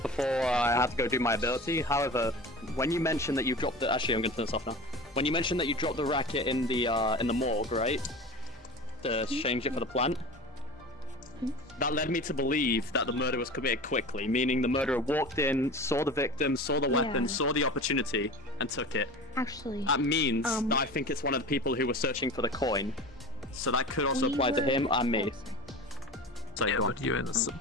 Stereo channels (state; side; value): normal; both; correlation 0.34